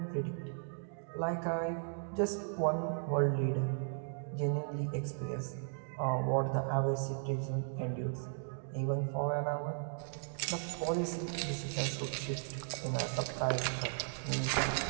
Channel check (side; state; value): left; silent; digital silence